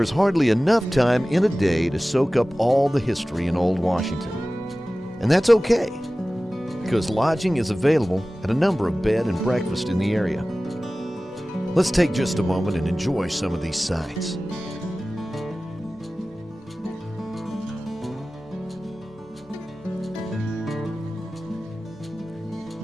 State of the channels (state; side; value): normal; both; correlation 0.97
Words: is hardly enough time in a day to soak up all the history in Old Washington. And that's okay, because lodging is available at a number of bed and breakfast in the area. Let's take just a moment and enjoy some of these sights.